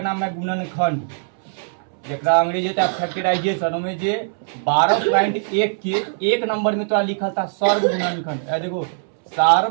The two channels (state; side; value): silent; left; 65 dB below the other